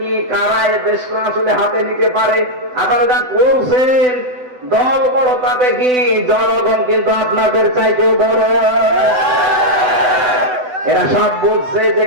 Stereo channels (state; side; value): late; left; 8.0 ms